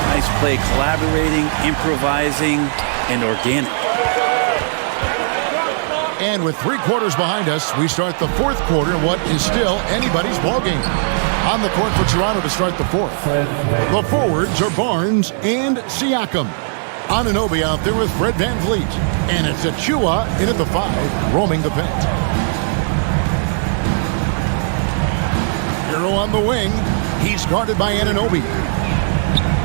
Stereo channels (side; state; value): left; silent; digital silence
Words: nice play, collaborating, improvising, and organic. And with 3 quarters behind us, we start the fourth quarter in what is still anybody's ball game. On the court for Toronto to start the fourth. The forwards are Barnes and Siakam. Anunoby out there with Fred Van Vliet. And it's Achua in at the 5, roaming the paint. Hero on the wing. He's guarded by Anunoby.